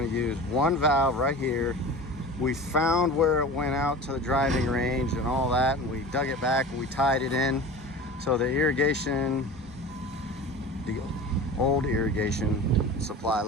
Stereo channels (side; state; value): both; normal; correlation 0.35